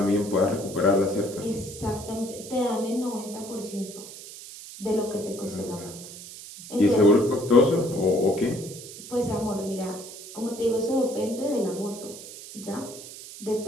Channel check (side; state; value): right; noise; hiss, 14 dB below the sound